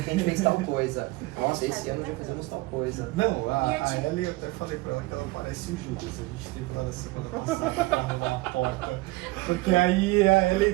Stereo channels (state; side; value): quieter; left; 21.5 dB